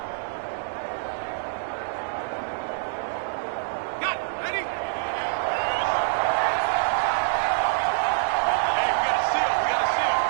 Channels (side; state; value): left; silent; digital silence